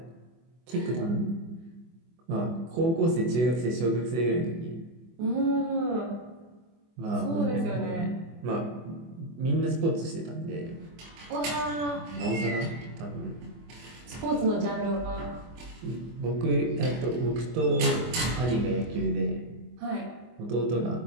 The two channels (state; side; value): late; left; 24 ms